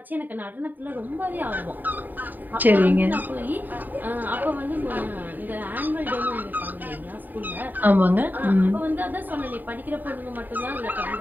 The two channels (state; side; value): late; left; 0.088 ms